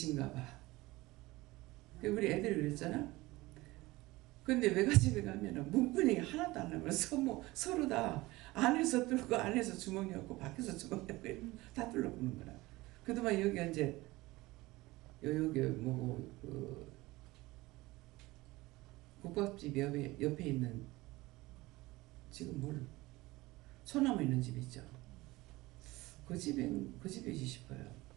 봐. 우리 애들이 그랬잖아. 근데 외갓집에 가면은 문분이 하나도 안 나면 서로 다 안에서 뚫고 안에서 주머니 없고 밖에서 주머니 없고 다 뚫어보는 거라. 그동안 여기 이제 여기 뭐고 그 국밥집 옆에 있는 지금 소나무 있는 집 있죠. 그 집이지 싶어요.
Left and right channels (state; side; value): quieter; left; 20.1 dB